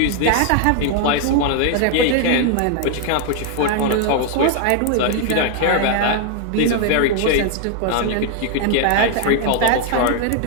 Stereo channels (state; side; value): different; both; correlation 0.00